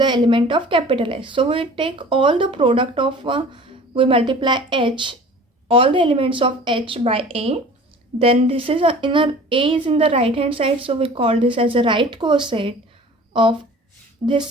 element of capital H. So we take all the product of we multiply H, all the elements of H by A, then this is A is in the right hand side, so we call this as a right coset of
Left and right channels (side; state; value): both; normal; correlation 0.45